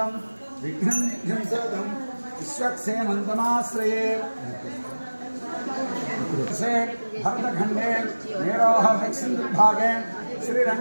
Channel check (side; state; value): both; inverted; correlation -1.00